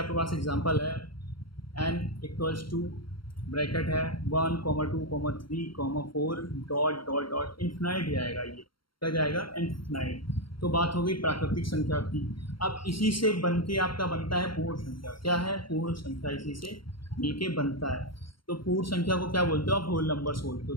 पास एग्जांपल है, n = ब्रैकेट है 1, 2, 3, 4 डॉट डॉट डॉट इन्फिनाइट जाएगा। ये क्या जाएगा? इन्फिनाइट। तो बात हो गई प्राकृतिक संख्या की। अब इसी से बन के आपका बनता है पूर्ण संख्या। क्या है? पूर्ण संख्या इसी से मिलके बनता है। तो पूर्ण संख्या को क्या बोलते हो आप? होल नंबर्स बोलते हो।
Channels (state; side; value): late; right; 0.73 ms